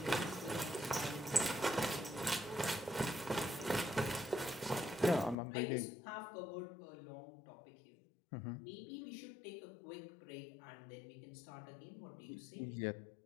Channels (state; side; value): drops out; right; at 5.4 s